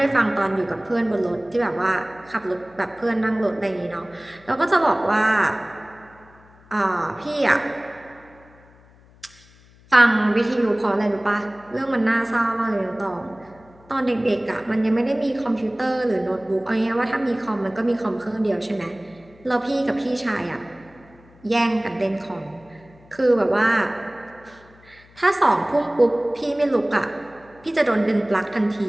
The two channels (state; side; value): noise; left; hum, 27 dB below the sound